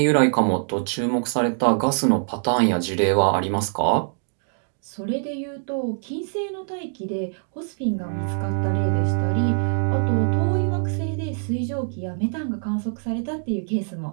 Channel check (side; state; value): left; silent; digital silence